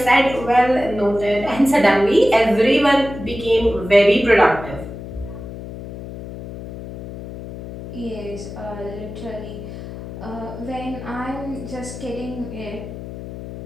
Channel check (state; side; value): noise; left; hum, 11 dB below the sound